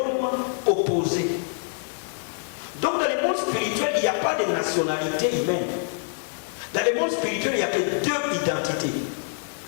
opposé. Donc dans le monde spirituel, il n'y a pas de nationalité humaine. Dans le monde spirituel, il n'y a que deux identités.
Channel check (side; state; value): right; silent; 61 dB below the other